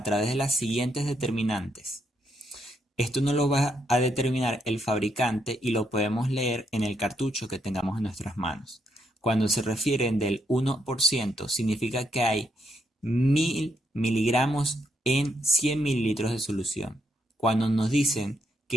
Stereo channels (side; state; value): both; normal; correlation 0.77